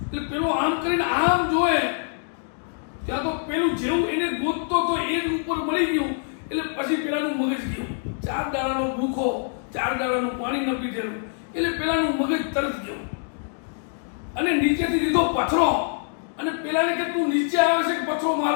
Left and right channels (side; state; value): right; silent; 62 dB below the other